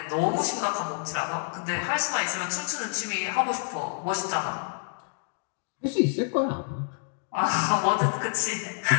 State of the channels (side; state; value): right; silent; digital silence